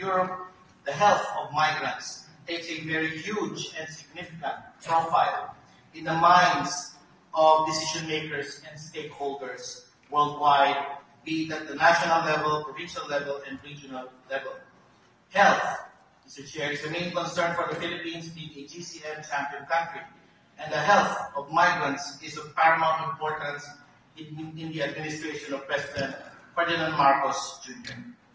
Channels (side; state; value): both; identical; correlation 1.00